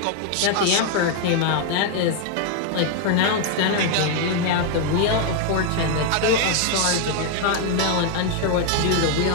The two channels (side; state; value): both; different; correlation 0.00